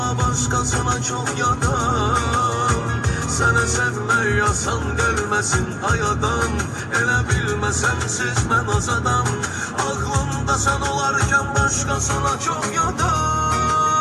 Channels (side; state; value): both; identical; correlation 1.00